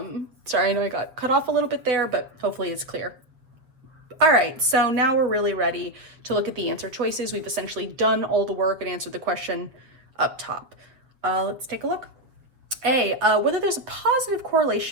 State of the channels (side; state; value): left; late; 7.6 ms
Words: I know I got cut off a little bit there, but hopefully it's clear. All right, so now we're really ready to look at the answer choices. We've essentially done all the work and answered the question up top. Let's take a look. A, whether there's a positive